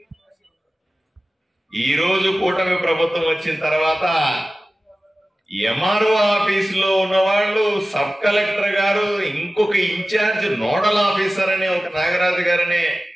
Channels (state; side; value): normal; both; correlation 0.96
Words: ఈ రోజు కూటమి ప్రభుత్వం వచ్చిన తర్వాత ఎంఆర్ఓ ఆఫీసులో ఉన్న వాళ్ళు సబ్ కలెక్టర్ గారు, ఇంకొక ఇన్ఛార్జ్ నోడల్ ఆఫీసర్ అనే ఒక నాగరాజు గారనే